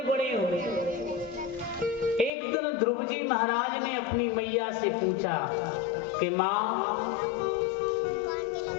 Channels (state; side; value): drops out; right; at 2.3 s